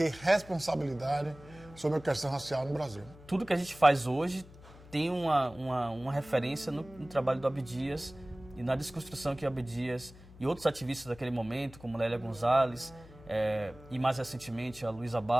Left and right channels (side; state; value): left; noise; hum, 20 dB below the sound